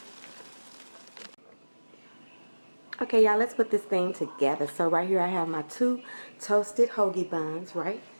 Okay, y'all, let's put this thing together. So right here I have my 2 toasted hoagie buns, right?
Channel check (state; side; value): inverted; both; correlation -1.00